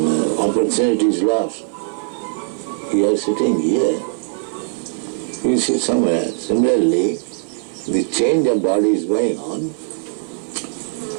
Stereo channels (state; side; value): silent; left; 61 dB below the other